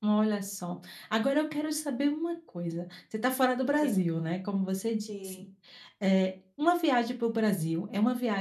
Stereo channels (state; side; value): identical; both; correlation 1.00